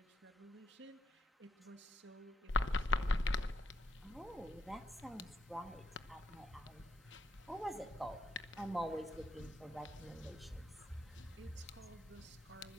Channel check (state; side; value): normal; both; correlation 0.77